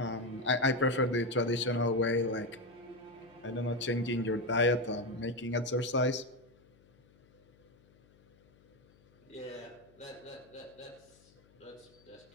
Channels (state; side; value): noise; left; hum, 29 dB below the sound